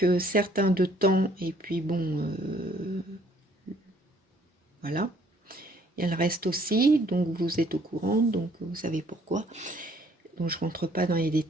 certain de temps, et puis bon, voilà. Il y a le reste aussi, donc vous êtes au courant, donc vous savez pourquoi. Donc je rentre pas dans les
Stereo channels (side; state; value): both; normal; correlation 0.62